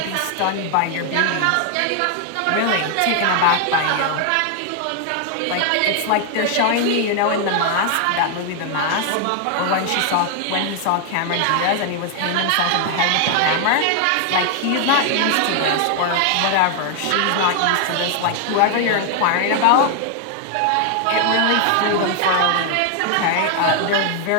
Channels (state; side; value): different; both; correlation 0.00